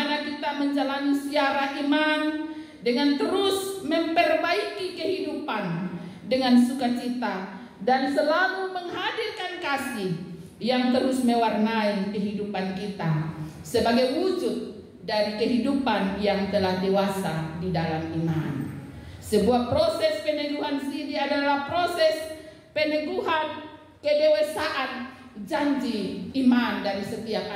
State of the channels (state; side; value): identical; both; correlation 1.00